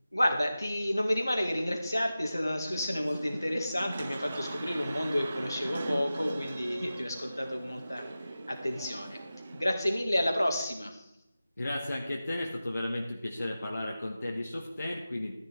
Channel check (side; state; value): both; inverted; correlation -0.94